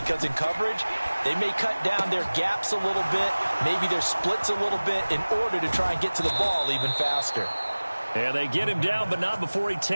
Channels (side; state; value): both; inverted; correlation -1.00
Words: in coverage, they may cut down their gaps a little bit, maybe their splits a little bit in order to try and get to the ball even faster. And they get him down, but not before he